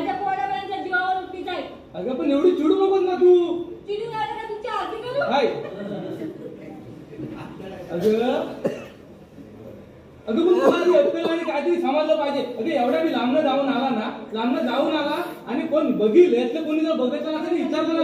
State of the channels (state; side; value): identical; both; correlation 1.00